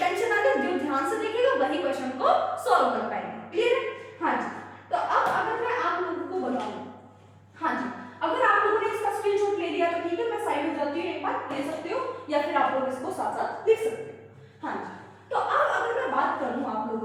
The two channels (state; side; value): identical; both; correlation 1.00